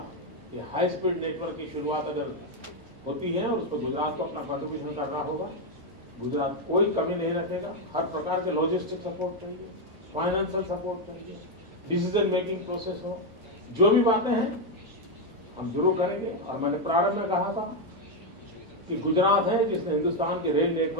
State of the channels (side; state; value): both; normal; correlation 0.03